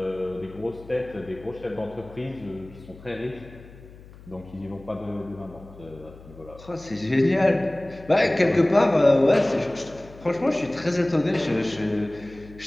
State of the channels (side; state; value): left; noise; hum, 20 dB below the sound